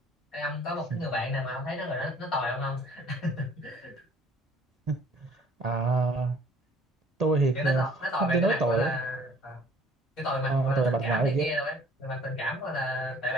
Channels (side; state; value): both; normal; correlation 0.55